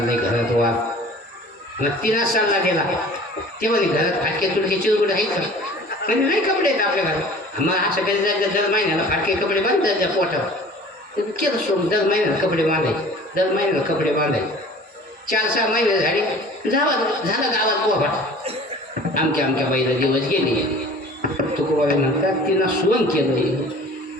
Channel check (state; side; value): normal; both; correlation 0.46